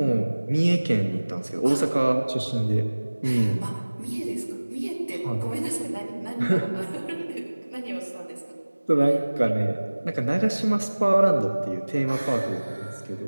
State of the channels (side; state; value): both; inverted; correlation -1.00